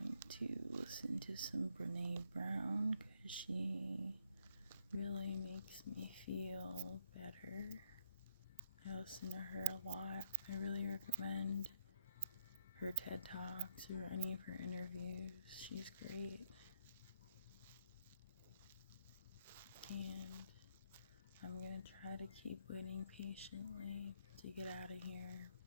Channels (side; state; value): both; inverted; correlation -0.72